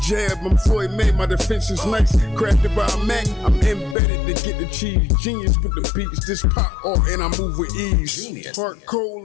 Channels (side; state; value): right; drops out; at 4.0 s